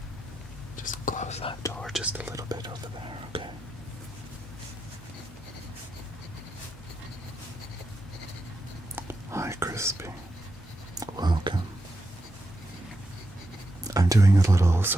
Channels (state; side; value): normal; both; correlation 0.85